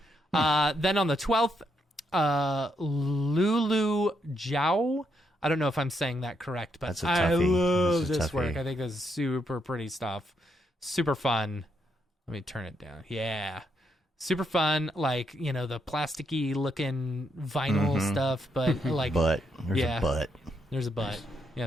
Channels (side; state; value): both; normal; correlation 0.78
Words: Then on the 12th, Lulu Zhao. I don't know if I'm saying that correct, but I love this work. I think this is super pretty stuff. Super fun. Let me turn it down. Yeah. Super fun, the plasticky looking vinyl stuff, but There's a butt. There's a butt,